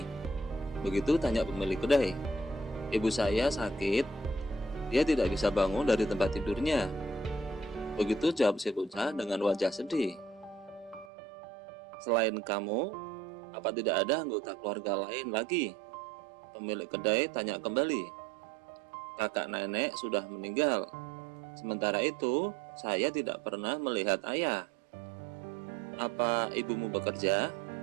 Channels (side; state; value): left; drops out; at 11.1 s